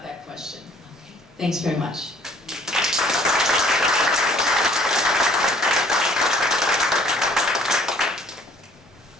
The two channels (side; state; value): both; normal; correlation 0.57